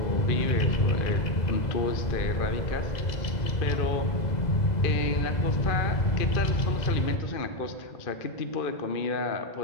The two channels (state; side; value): late; right; 2.0 ms